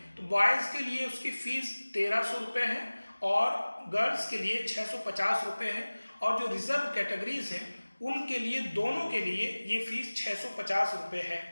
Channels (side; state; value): both; inverted; correlation -1.00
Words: तो बॉयज़ के लिए उसकी फीस 1300 रुपये है और गर्ल्स के लिए 650 रुपये है, और जो रिजर्व कैटेगरीज हैं उनके लिए, दोनों के लिए ये फीस 650 रुपये है।